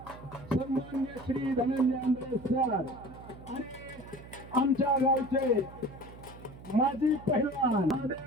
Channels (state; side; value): noise; right; hum, 17 dB below the sound